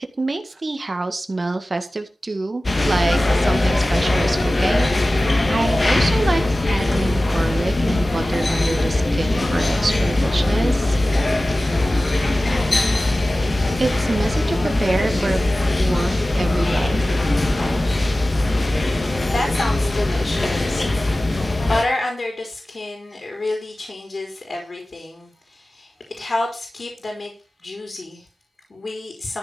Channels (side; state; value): both; normal; correlation 0.96